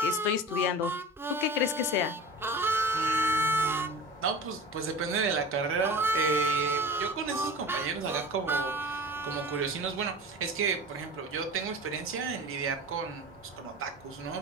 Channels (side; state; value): both; normal; correlation 0.36